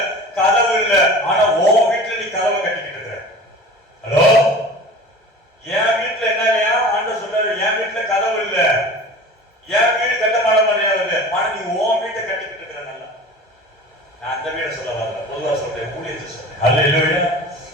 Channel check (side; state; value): both; normal; correlation 0.39